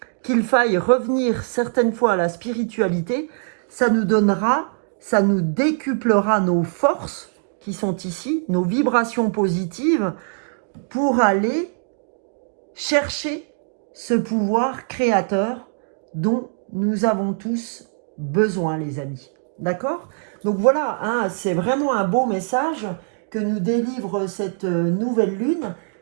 qu'il faille revenir certaines fois à la spiritualité, ça nous donnera, ça nous décuplera nos forces qui sont ici, nos vibrations positives, pour aller chercher ce pouvoir créateur dont nous avons tous besoin, les amis. D'accord? Donc voilà, hein, c'est vraiment un beau message que nous délivre cette nouvelle lune.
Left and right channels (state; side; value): silent; left; digital silence